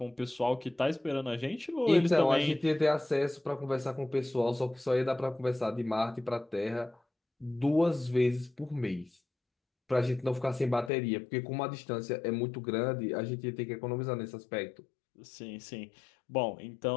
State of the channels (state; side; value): drops out; right; at 10.9 s